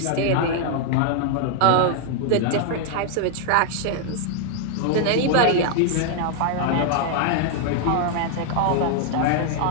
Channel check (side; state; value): both; different; correlation 0.00